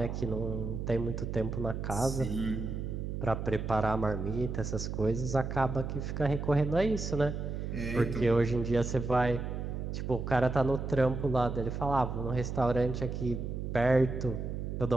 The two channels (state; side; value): noise; right; hum, 4 dB below the sound